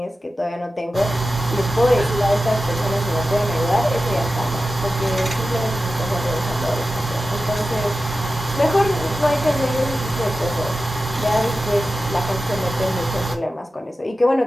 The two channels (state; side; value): normal; both; correlation 0.93